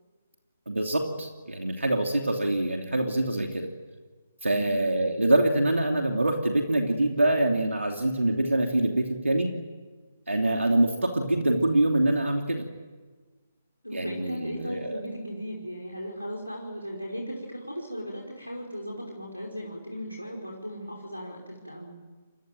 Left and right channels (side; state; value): both; inverted; correlation -0.91